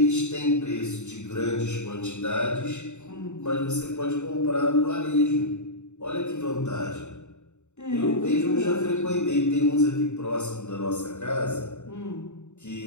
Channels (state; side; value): late; right; 0.83 ms